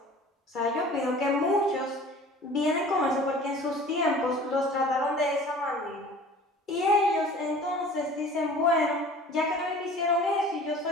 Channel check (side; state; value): both; normal; correlation 0.45